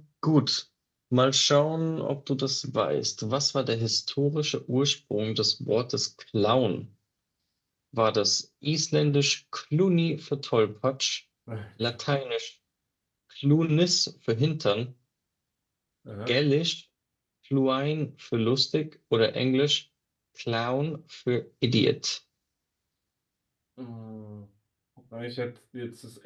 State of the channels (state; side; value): identical; both; correlation 1.00